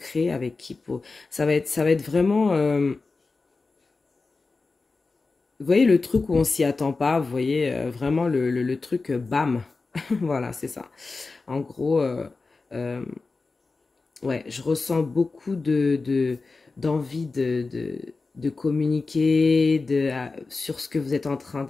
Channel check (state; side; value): quieter; right; 3.9 dB